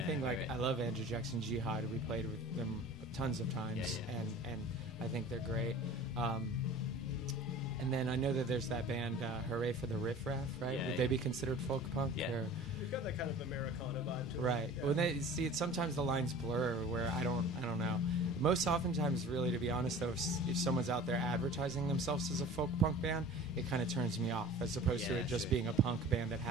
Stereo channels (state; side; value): normal; both; correlation 0.42